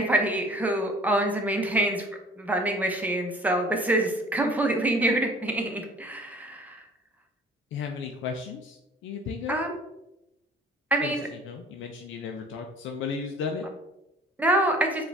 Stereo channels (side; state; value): both; normal; correlation 0.50